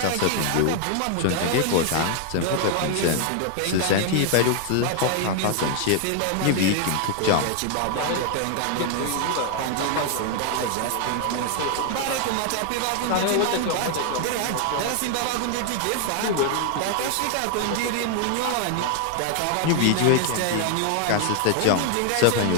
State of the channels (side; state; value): both; different; correlation 0.00